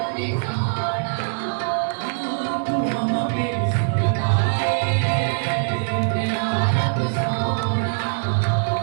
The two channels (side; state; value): left; silent; digital silence